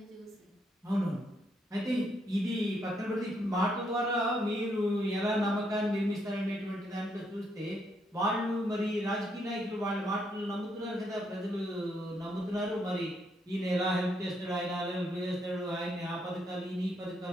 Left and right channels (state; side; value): normal; both; correlation 0.75